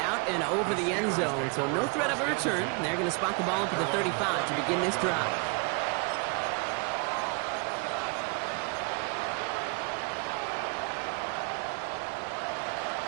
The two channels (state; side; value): quieter; left; 32.5 dB